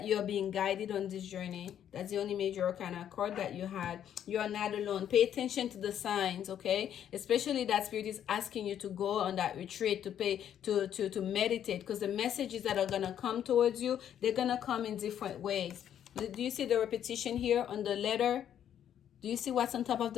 you are being guided on this journey. That's the only major arcana card that you had. You are not alone. Pay attention to the signs, okay? Especially that spirit is asking you to go on that retreat, to meditate, because the messages that are going to come towards you, they're going to come in different ways. Do you see the repetition here on the letter? Do you see what's on top of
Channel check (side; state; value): right; quieter; 9.9 dB